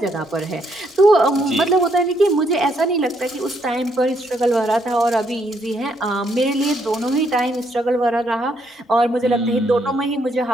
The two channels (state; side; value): normal; both; correlation 0.73